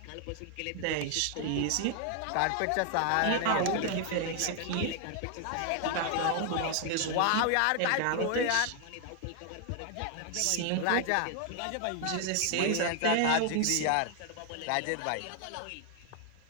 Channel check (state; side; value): different; both; correlation 0.00